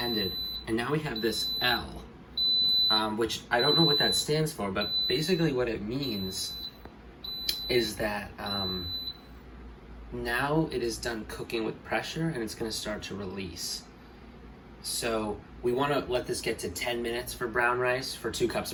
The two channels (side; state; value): both; identical; correlation 1.00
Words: and now we have this L, which I don't know what that stands for, but basically what it means is that now it is done cooking with pressure, and it's going to start to release. So we want to let this get to 10 minutes for brown rice, for 2 cups